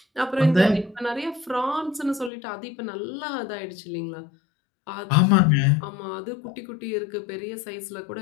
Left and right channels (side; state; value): right; drops out; at 2.3 s